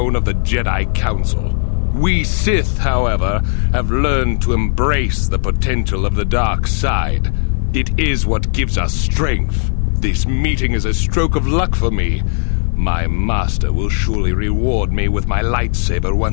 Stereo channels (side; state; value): right; silent; digital silence